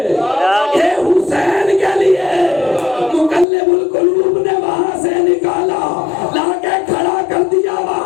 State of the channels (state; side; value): drops out; right; at 3.5 s